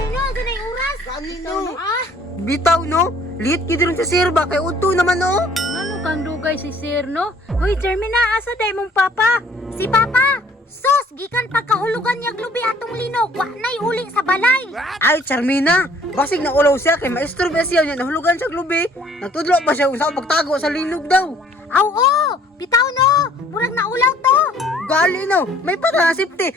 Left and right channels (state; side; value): normal; both; correlation 0.58